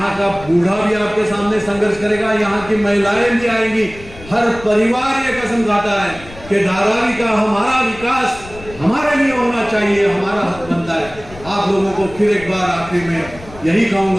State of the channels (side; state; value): left; noise; rumble, 18 dB below the sound